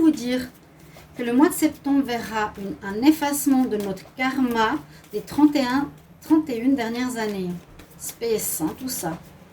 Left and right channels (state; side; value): identical; both; correlation 1.00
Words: dire que le mois de septembre verra un effacement de notre karma des 31 dernières années. Space, hein, tout ça.